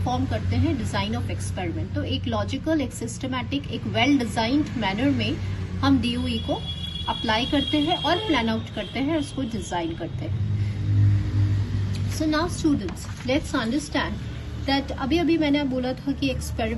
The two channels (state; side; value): identical; both; correlation 1.00